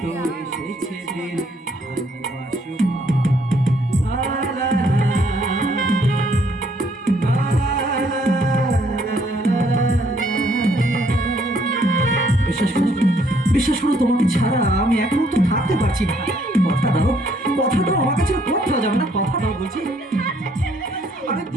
তো এসেছে দিন ভালোবাসবার। লা লা বিশ্বাস করো, বিশ্বাস করো, তোমাকে ছাড়া আমি এক মুহূর্ত থাকতে পারছি না। কথা দাও, কথা দাও, আমার কাছে কোথাও যাবে না, কথা দাও বলছি। আরে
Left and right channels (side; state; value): both; normal; correlation 0.67